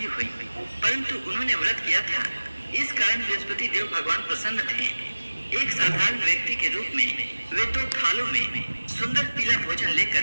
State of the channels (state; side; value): inverted; both; correlation -1.00